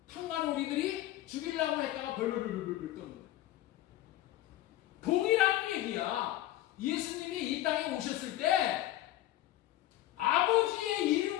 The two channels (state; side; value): quieter; right; 14.7 dB